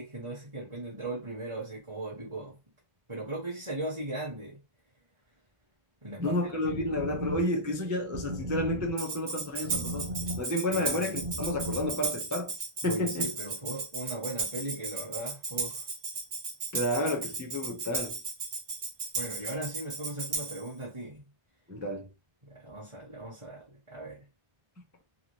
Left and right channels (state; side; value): late; left; 1.6 ms